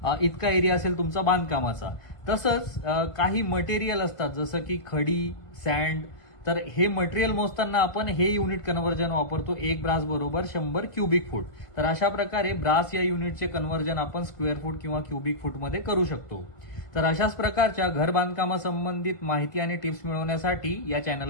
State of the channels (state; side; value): late; right; 1.6 ms